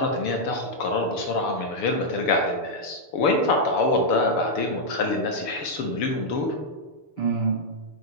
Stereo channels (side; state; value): right; late; 6.8 ms